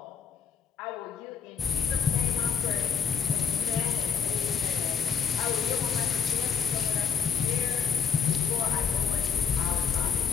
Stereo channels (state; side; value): quieter; right; 6.9 dB